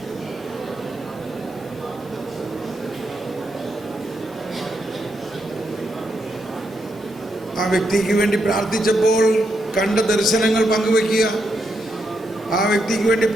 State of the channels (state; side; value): normal; both; correlation 0.81